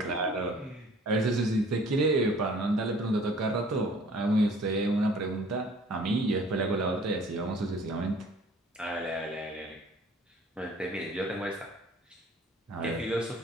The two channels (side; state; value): both; normal; correlation 0.52